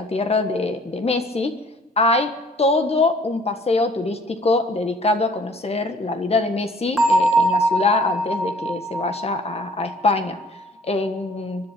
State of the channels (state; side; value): normal; both; correlation 0.56